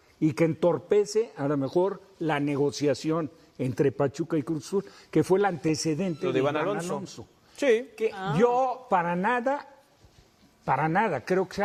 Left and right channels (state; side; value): identical; both; correlation 1.00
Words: y que entorpece a lo mejor la negociación entre Pachuca y Cruz Azul, que fue el antecedente Lo de Iván Alonso. Sí. Que yo para nada creo que